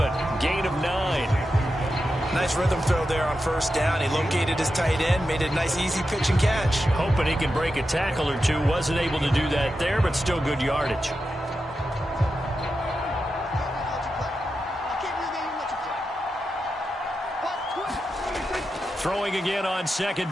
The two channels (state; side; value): normal; both; correlation 0.89